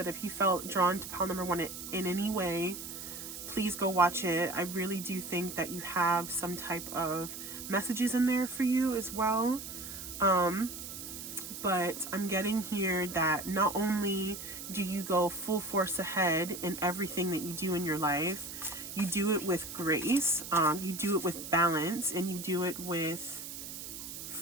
if you felt drawn to pile number 1 in any way, please go watch it. I really do think that you have some type of messages in there for you as well. But I'm getting here that not only do you go full force ahead in everything that you do in your life, you do it with grace, you do it with balance, and you do it with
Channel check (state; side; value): noise; right; hiss, 9 dB below the sound